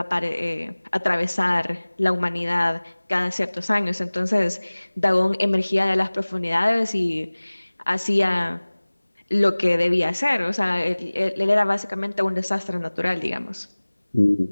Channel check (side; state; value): both; inverted; correlation -1.00